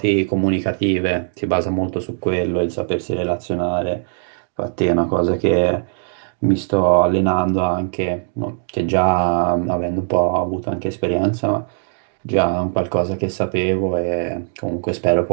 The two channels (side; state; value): left; silent; digital silence